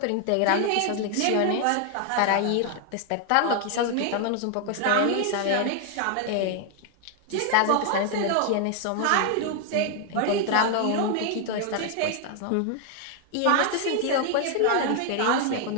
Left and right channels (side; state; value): both; different; correlation 0.00